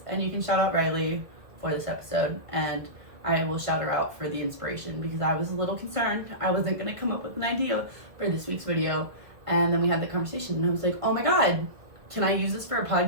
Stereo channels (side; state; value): left; late; 1.9 ms